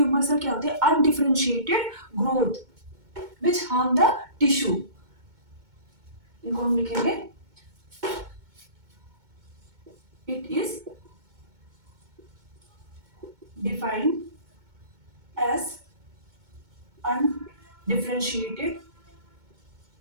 सेल क्या होते हैं, undifferentiated growth which harm the tissue. इनको हम लिखेंगे it is defined as undifferentiated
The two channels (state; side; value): late; left; 2.2 ms